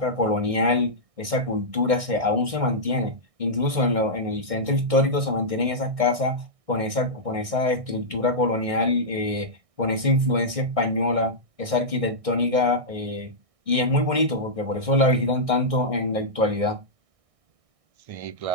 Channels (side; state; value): left; late; 1.6 ms